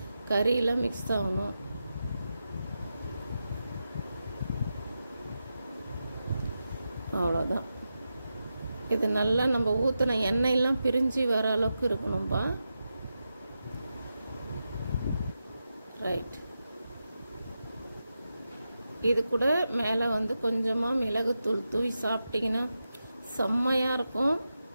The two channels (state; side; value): inverted; both; correlation -0.90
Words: கறியெல்லாம் மிக்ஸ் ஆகணும். அவ்வளோதான். இது நல்லா நம்ம ஊற்றின எண்ணெயெல்லாம் பிரிஞ்சு வர அளவுக்கு இருக்கணும்பா. ரைட். இது கூட மேலே வந்து கொஞ்சமாக மிளகுத்தூள் தூவி சாப்பிட்டிங்கன்னா செம்மையாக இருக்கும்.